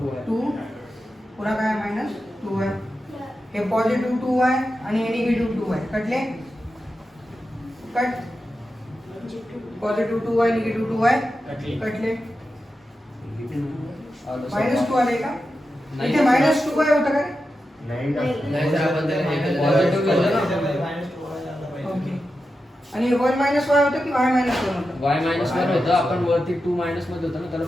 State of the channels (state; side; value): normal; both; correlation 0.90